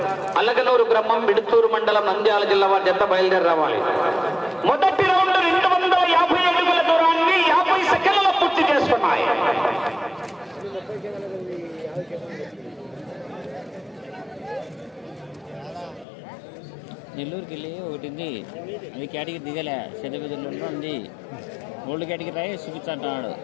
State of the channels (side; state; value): right; drops out; at 16.1 s